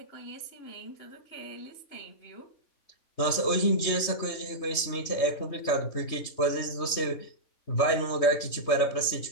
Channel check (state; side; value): late; right; 3.2 ms